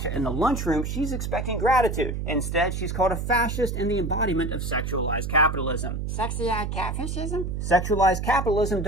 in the lunchroom, she's expecting gratitude. Instead, she's called a fascist and the embodiment of sexualized capitalism. Sexy-eyed catfishism? Sexualized capitalism,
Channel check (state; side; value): noise; right; hum, 3 dB below the sound